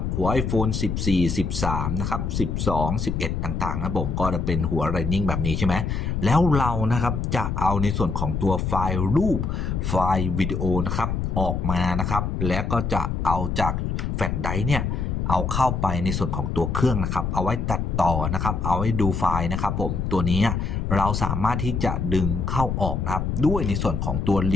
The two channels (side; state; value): left; noise; rumble, 1 dB below the sound